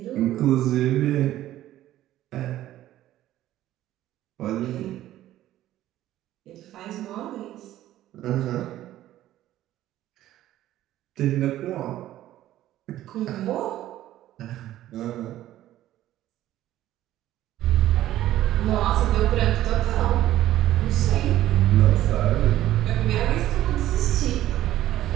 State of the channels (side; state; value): left; quieter; 13.8 dB